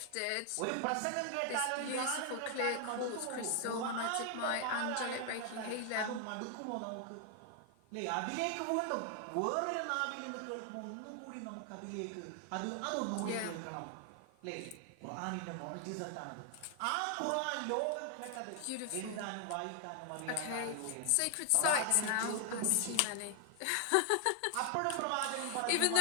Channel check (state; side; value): different; both; correlation 0.00